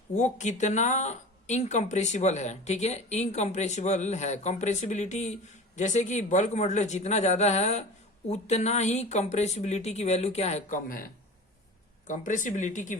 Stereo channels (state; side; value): normal; both; correlation 0.35